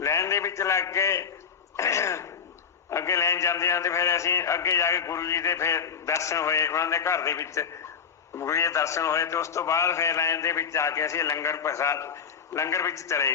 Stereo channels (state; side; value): quieter; right; 6.7 dB